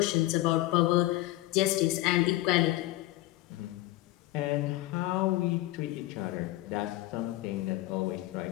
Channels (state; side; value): quieter; right; 17.5 dB